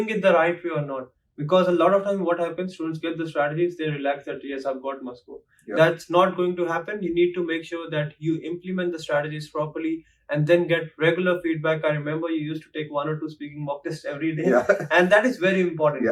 it the right way or not. Because a lot of time what happens, students get the strategies, they relax that yes, I've got my score. That's not going to happen. You need to make sure that you implement the strategies properly and then get regular feedback. I remember you used to take 1 or 2 speaking mock tests every day. And that is very important.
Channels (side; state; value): both; identical; correlation 1.00